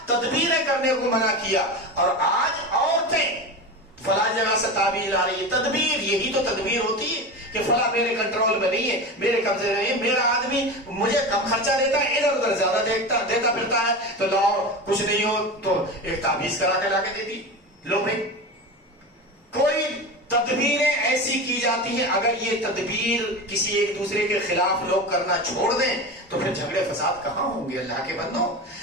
تدبیریں کرنے کو منع کیا. اور آج عورتیں فلاں جگہ سے تعبیر آ رہی ہے، تدبیر، یہی تو تدبیر ہوتی ہے کہ فلاں میرے کنٹرول میں نہیں ہے، میرے قبضے میں نہیں ہے، میرا آدمی مجھے کم خرچہ دیتا ہے، ادھر ادھر زیادہ دیتا پھرتا ہے، تو لاؤ کچھ نہیں ہو تو ایک تعویذ کرا کے لا کے دے دی، لو بھائی. کوئی تدبیریں ایسی کی جاتی ہیں، اگر یہ تدبیر کسی ایک دوسرے کے خلاف لوگ کرنا چھوڑ دیں تو پھر جھگڑے فساد کہاں ہوں گے اللہ کے بندوں؟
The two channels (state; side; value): normal; both; correlation 0.25